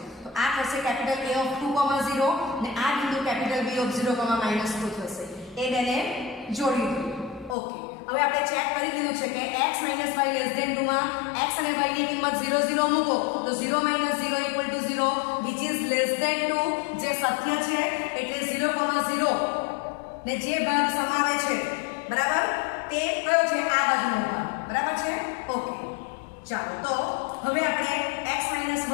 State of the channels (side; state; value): right; drops out; at 7.6 s